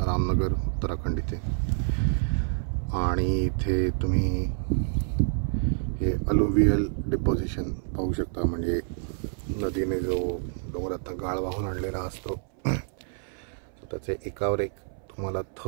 उत्तराखंड इथे. आणि इथे तुम्ही हे अलुवियल डिपॉझिशन पाहू शकता. म्हणजे नदीने जो डोंगरातनं गाळ वाहून आणलेला असतो त्याचे एकावर एक तुम्हाला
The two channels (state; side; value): silent; left; 59 dB below the other